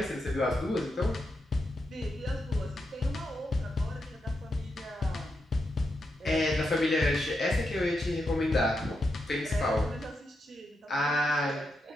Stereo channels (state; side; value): normal; both; correlation 0.85